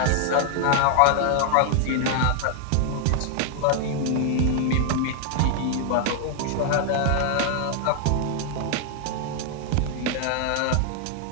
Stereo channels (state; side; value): different; both; correlation 0.00